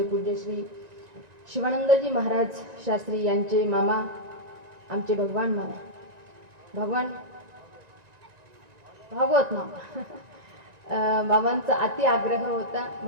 पूज्य श्री शिवानंदजी महाराज शास्त्री यांचे मामा आमचे भगवान मामा भागवत मामा बाबांचा अति आग्रह होता.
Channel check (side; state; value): left; late; 1.9 ms